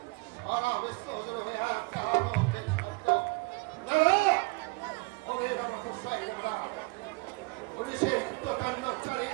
সারা বিশ্ব হজর হয়ে একটা আনন্দের শব্দ। দাদা ওদের আমার হোসাই দাদা পুলিশের কৃতকাণ্ডচারে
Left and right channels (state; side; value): quieter; left; 27.0 dB